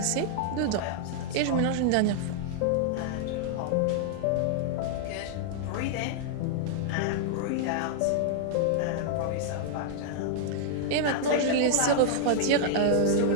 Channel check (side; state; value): both; different; correlation -0.01